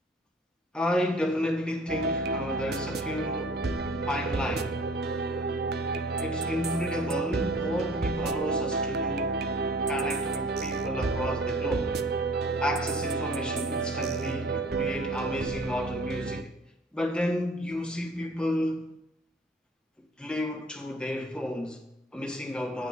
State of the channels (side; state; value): both; normal; correlation 0.49